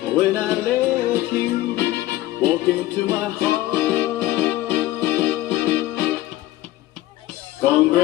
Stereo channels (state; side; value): quieter; right; 16.1 dB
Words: When I let you walk into my heart.